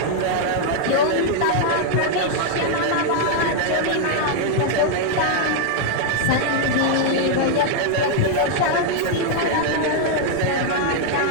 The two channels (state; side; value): different; both; correlation 0.00